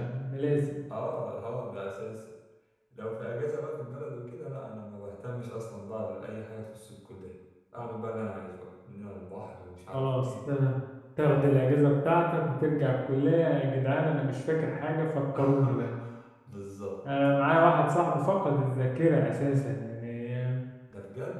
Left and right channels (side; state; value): both; identical; correlation 1.00